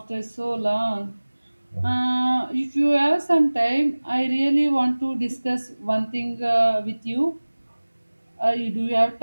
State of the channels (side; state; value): both; inverted; correlation -1.00